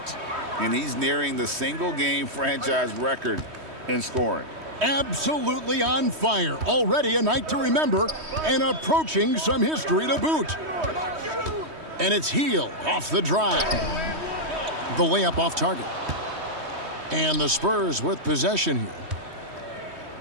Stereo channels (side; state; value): left; late; 3.2 ms